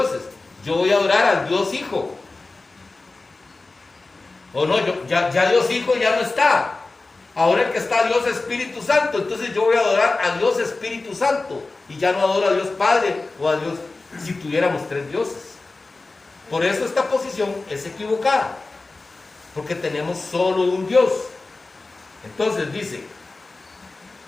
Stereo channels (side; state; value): right; quieter; 3.4 dB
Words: yo voy a adorar al Dios Hijo. O no, ya Dios Hijo ya no está. Ahora el que está Dios Espíritu Santo, entonces yo voy a adorar a Dios Espíritu Santo y ya no adoro a Dios Padre o a Dios, si tuviéramos tres dioses. Por eso esta posición es equivocada, porque tenemos solo un Dios. Entonces dice,